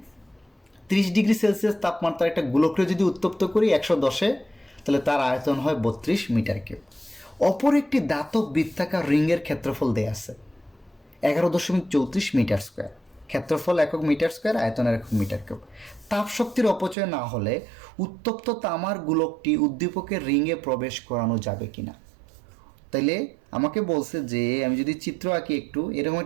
30 ডিগ্রি সেলসিয়াস তাপমাত্রা একটা গোলককে যদি উত্তপ্ত করি 110-এ, তাহলে তার আয়তন হয় 32 মিটার কিউব। অপর একটি ধাতব বৃত্তাকার রিংয়ের ক্ষেত্রফল দেয়া আছে 11.34 মিটার স্কোয়ার। ক্ষেত্রফল একক মিটার স্কোয়ার, আয়তনের একক মিটার কিউব। তাপ শক্তির অপচয় না হলে উত্তপ্ত তামার গোলকটি উদ্দীপকের রিংয়ে প্রবেশ করানো যাবে কিনা। তাইলে আমাকে বলছে যে আমি যদি চিত্র আঁকি একটু, এরকম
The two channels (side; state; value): left; drops out; at 16.9 s